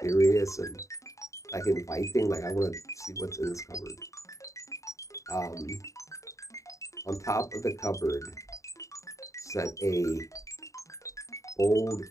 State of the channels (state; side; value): late; right; 0.15 ms